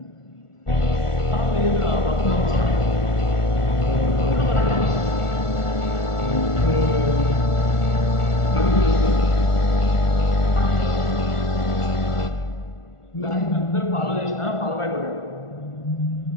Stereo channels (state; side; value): late; right; 1.4 ms